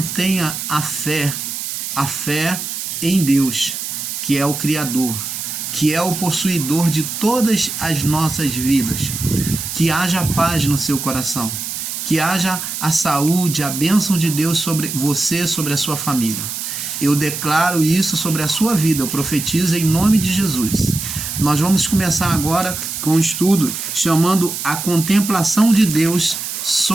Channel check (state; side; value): noise; right; hiss, 5 dB below the sound